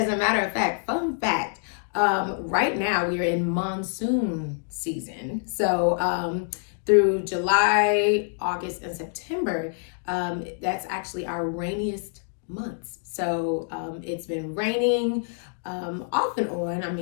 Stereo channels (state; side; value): silent; right; digital silence